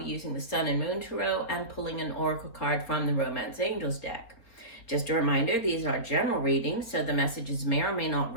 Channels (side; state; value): right; late; 4.1 ms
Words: using the Sun and Moon Tarot and pulling an oracle card from the Romance Angels deck. Just a reminder, these are general readings, so the messages may or may not